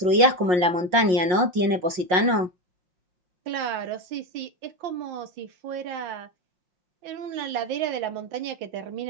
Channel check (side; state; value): left; late; 5.6 ms